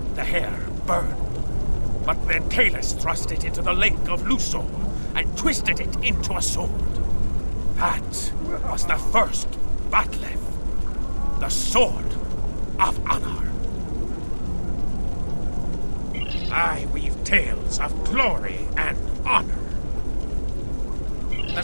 The hair burned, but then Kalis thrust it into the lake of Lusor and twisted it into a sword. That was the first Bat'leth, the Sword of Honor. I weave tales of glory and honor. The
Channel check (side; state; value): both; inverted; correlation -1.00